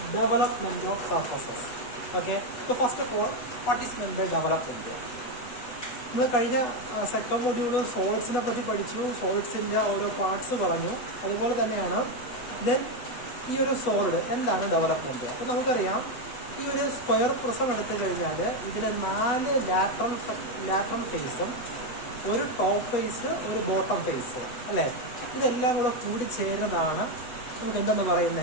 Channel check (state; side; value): late; right; 8.1 ms